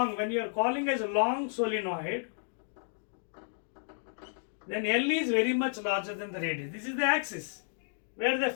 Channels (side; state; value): right; silent; digital silence